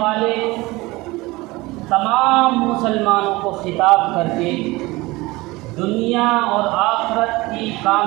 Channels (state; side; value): quieter; left; 21.3 dB